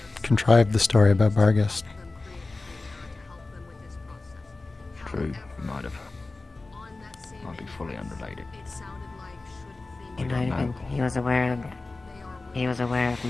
contrived the story about Barghest. True, he might have. Might be fully unrelated. He was aware of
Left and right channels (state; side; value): quieter; right; 3.4 dB